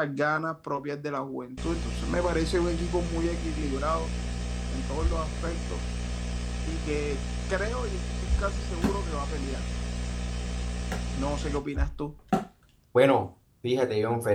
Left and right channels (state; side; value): identical; both; correlation 1.00